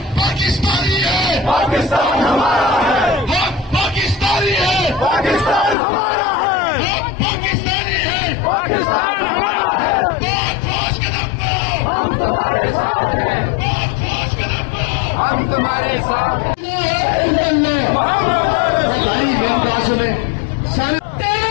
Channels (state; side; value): drops out; right; at 5.8 s